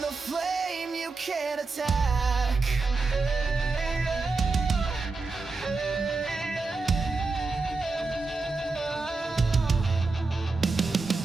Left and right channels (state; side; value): quieter; left; 3.8 dB